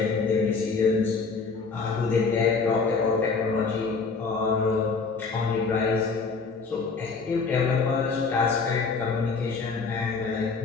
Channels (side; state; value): right; quieter; 4.7 dB